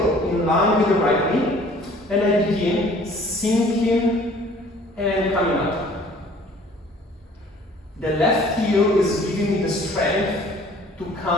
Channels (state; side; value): normal; both; correlation 0.53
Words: in line with the right knee, and I begin sinking and coming up. The left heel is giving me the strength to